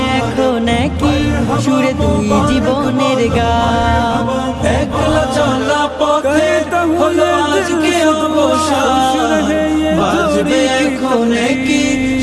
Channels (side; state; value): both; identical; correlation 1.00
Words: এখন কি সুরে দুই জীবনের গান। একলা চলা পথে হলো আজকে অবসান, বাজবে এখন কি